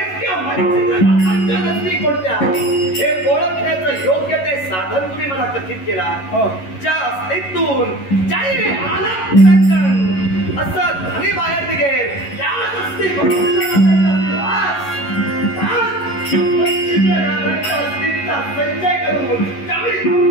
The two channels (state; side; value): late; right; 11 ms